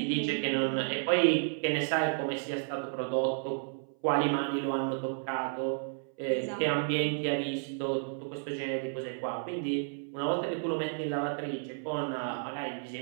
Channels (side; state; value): left; silent; 56 dB below the other